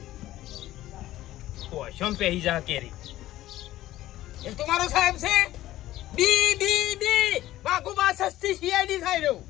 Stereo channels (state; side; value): quieter; right; 14.9 dB